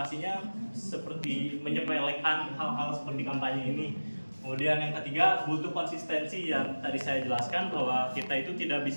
seperti menyepelekan hal-hal seperti kampanye ini. Kemudian yang ketiga butuh konsistensi yang tadi saya jelaskan bahwa kita itu tidak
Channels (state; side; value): inverted; both; correlation -1.00